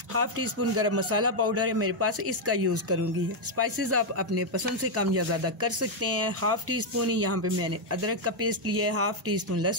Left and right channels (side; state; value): both; normal; correlation 0.00